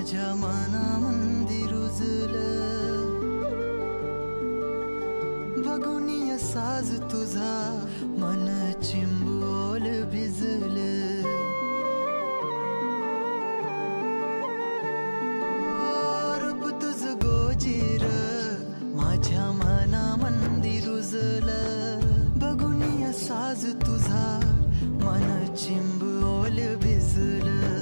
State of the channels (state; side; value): inverted; both; correlation -1.00